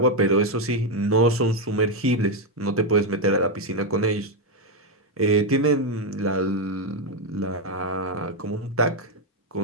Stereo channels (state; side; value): normal; both; correlation 0.04